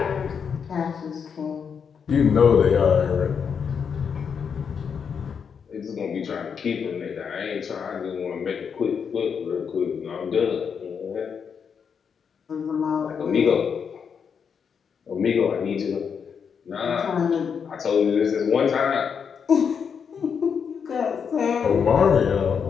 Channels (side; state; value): right; quieter; 6.7 dB